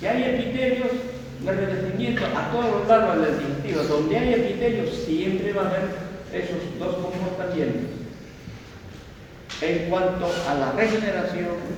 Que hay epitelios de revestimiento a todos los lados del digestivo. Donde hay epitelios, siempre va a haber esos dos comportamientos en cuanto a la regeneración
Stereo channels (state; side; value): identical; both; correlation 1.00